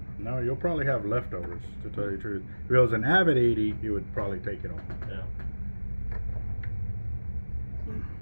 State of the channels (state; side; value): inverted; both; correlation -1.00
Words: No, you'll probably have leftovers, to tell you the truth. If it was an Avet 80, you would probably take it all. Yeah.